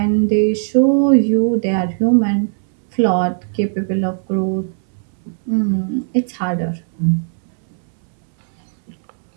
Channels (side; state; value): left; silent; 68 dB below the other